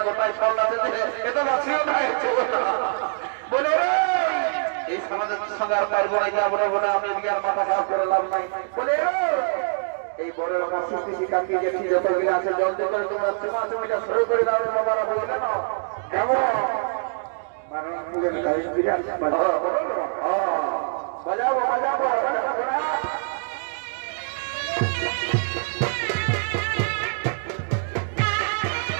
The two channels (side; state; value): left; silent; digital silence